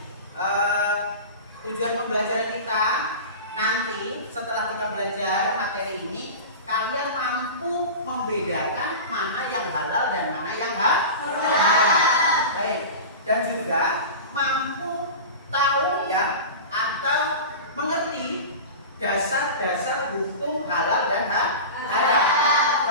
Tujuan pembelajaran kita nanti setelah kita belajar materi ini, kalian mampu membedakan mana yang halal dan mana yang haram. Baik, dan juga mampu tahu ya atau mengerti dasar-dasar hukum halal dan haram.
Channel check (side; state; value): both; inverted; correlation -0.30